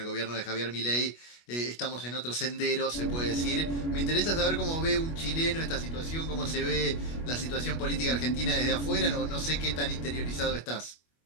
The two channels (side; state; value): right; late; 25 ms